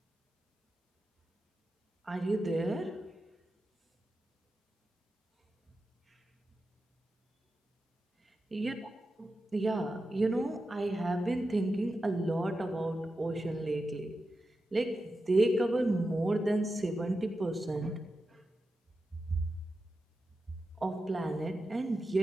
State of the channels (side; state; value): both; normal; correlation 0.90